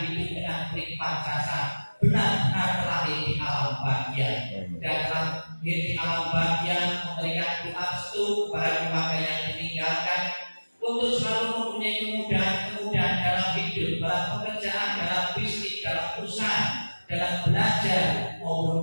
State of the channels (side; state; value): both; inverted; correlation -1.00